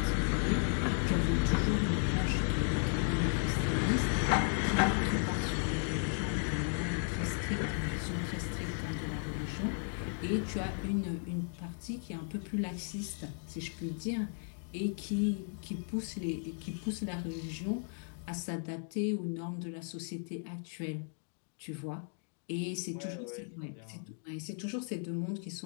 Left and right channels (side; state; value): right; silent; 54 dB below the other